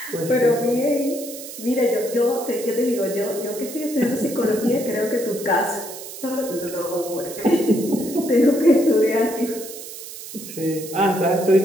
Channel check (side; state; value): right; noise; hiss, 12 dB below the sound